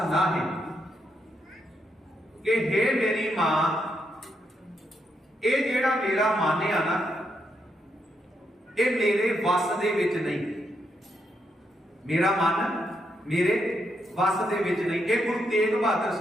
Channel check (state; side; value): normal; both; correlation 0.80